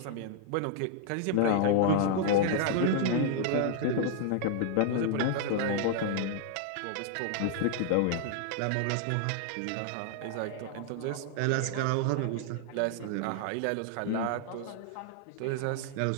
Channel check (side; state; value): both; different; correlation -0.01